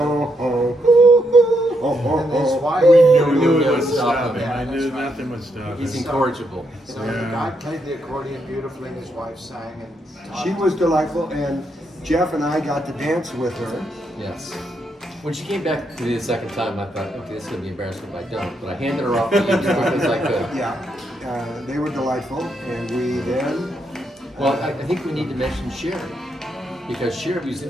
oh. Oh, oh, and his oh. wife. We knew Yeah, it would stop stop him. him. I Yeah, knew that's right. nothing would stop He's him. incorrigible. So the guy played the accordion beautifully, and his wife sang and taught She him. was delightful, and Jeff and I got to dance with her. Yes. When she came back to me the second time, I thought, okay, this is going to be embarrassing if I don't. But I handed her off to you as quick as I could. Yeah, they were delightful, and we then Well, I think we need to mention Sherry. Because Sherry was the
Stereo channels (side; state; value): both; normal; correlation 0.79